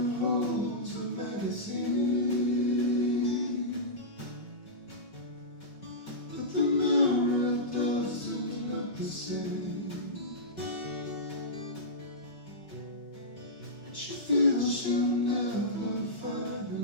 holds a magazine, but the mirror doesn't look the same. And she feels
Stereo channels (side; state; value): right; late; 5.3 ms